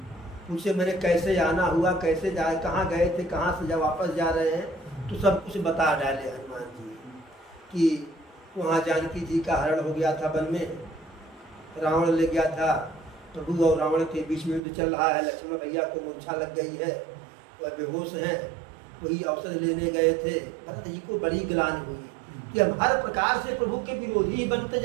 पूछे मैंने कैसे आना हुआ, कैसे जाए, कहाँ गए थे, कहाँ से जब वापस जा रहे हैं, तो सब कुछ बता डाले हनुमान जी कि वहाँ जानकी जी का हरण हो गया था, वन में रावण ले गया था, प्रभु और रावण के बीच में युद्ध चल रहा है, लक्ष्मण भैया को मूर्छा लग गई है, वह बेहोश हैं, वही अवसर लेने गए थे। भरत जी को बड़ी ग्लानि हुई कि हम हर प्रकार से प्रभु के विरोधी बनते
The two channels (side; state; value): left; drops out; at 14.6 s